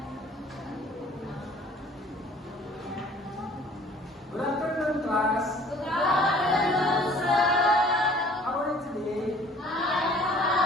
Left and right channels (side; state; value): both; normal; correlation 0.52